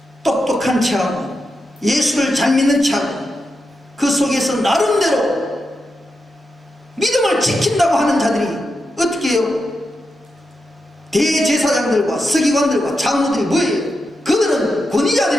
똑똑한 체하고 예수를 잘 믿는 체하고 그 속에서 나름대로 믿음을 지킨다고 하는 자들이 어떻게 해요? 대제사장들과 서기관들과 장로들이 뭐예요? 그들은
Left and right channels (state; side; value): normal; both; correlation 0.87